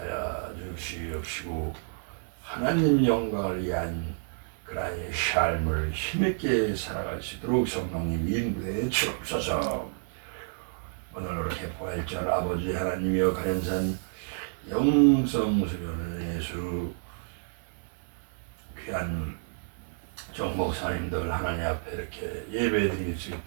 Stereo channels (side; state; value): left; silent; 57 dB below the other